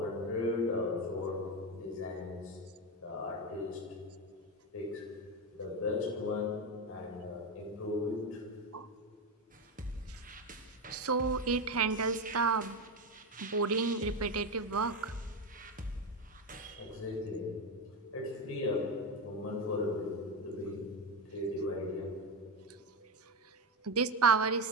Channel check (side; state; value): both; normal; correlation 0.13